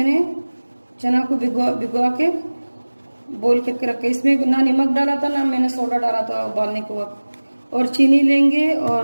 चना को भिगो के बॉईल करके रखा। इसमें ना नमक डाला था ना मैंने सोडा डाला था उबालने के वक्त। और चीनी लेंगे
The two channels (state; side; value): inverted; both; correlation -1.00